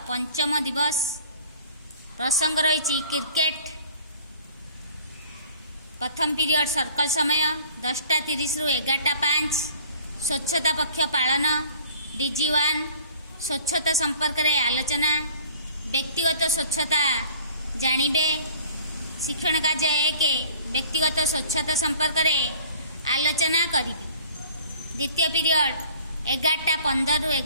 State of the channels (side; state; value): both; inverted; correlation -0.50